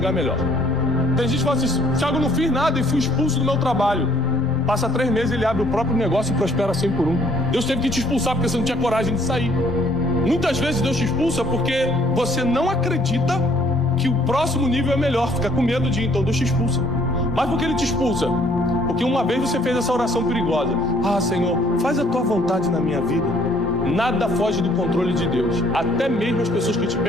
melhor. Tem gente que fala assim: Thiago, eu não fiz nada e fui expulso do meu trabalho. Passa 3 meses, ele abre o próprio negócio e prospera 100 por 1. Deus teve que te expulsar porque você não tinha coragem de sair. Muitas vezes Deus te expulsa porque você não acredita que o próximo nível é melhor, fica com medo de ir, então Deus te expulsa. Mas por que Ele te expulsa? Porque uma vez você fez essa oração perigosa: ah, Senhor, faz a tua vontade na minha vida. Nada foge do controle de Deus. Até mesmo as pessoas que te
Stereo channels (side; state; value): both; normal; correlation 0.62